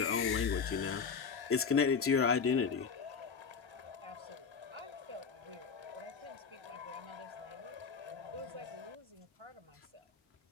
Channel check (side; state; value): right; quieter; 5.9 dB